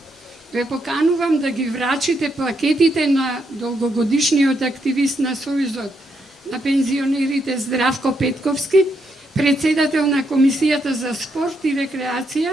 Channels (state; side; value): normal; both; correlation 0.78